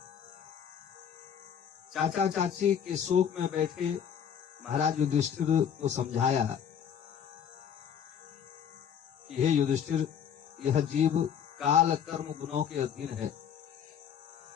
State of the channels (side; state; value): right; quieter; 8.2 dB